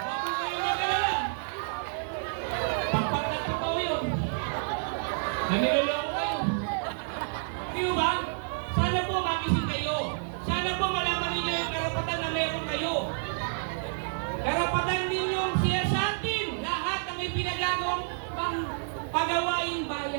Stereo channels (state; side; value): silent; left; digital silence